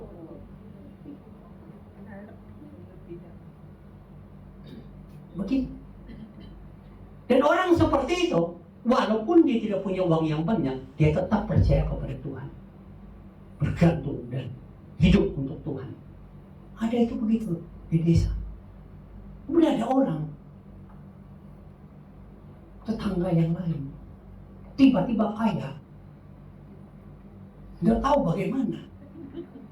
Begitu. Dan orang seperti itu, walaupun dia tidak punya uang yang banyak, dia tetap percaya kepada Tuhan, bergantung dan hidup untuk Tuhan. Ada itu begitu di desa. Kemudian ada orang, tetangga yang lain, tiba-tiba kaya, nggak tahu bagaimana.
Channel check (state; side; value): identical; both; correlation 1.00